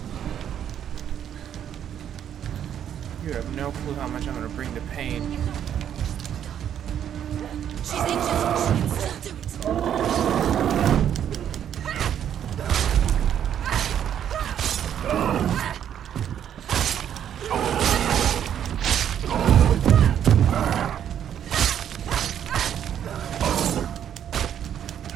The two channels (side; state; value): left; quieter; 9.6 dB